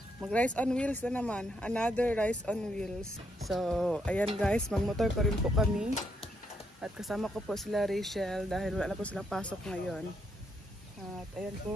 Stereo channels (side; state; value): both; normal; correlation 0.77